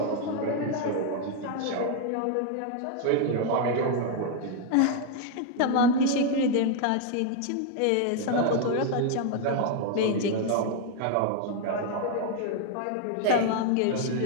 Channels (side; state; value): both; different; correlation 0.00